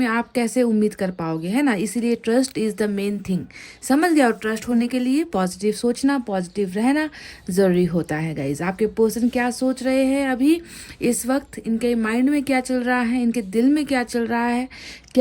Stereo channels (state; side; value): identical; both; correlation 1.00